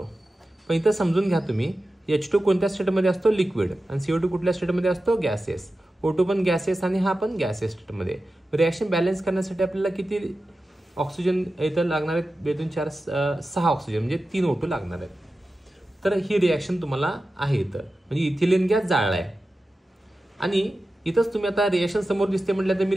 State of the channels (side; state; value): both; normal; correlation 0.93